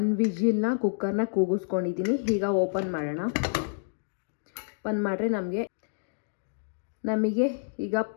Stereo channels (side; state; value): right; silent; digital silence